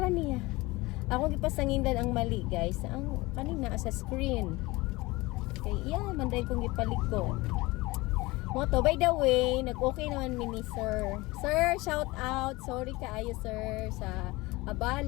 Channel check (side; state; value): right; quieter; 21.7 dB